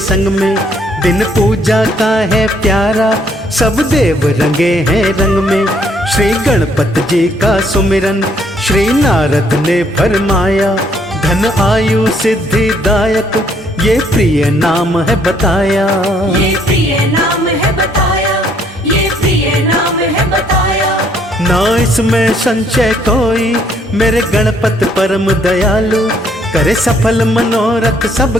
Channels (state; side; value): normal; both; correlation 0.67